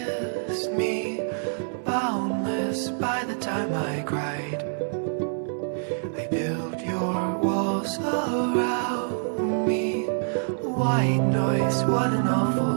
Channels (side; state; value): left; silent; 58 dB below the other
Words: me, boundless by the time I cried. I built your walls around me. White noise, what an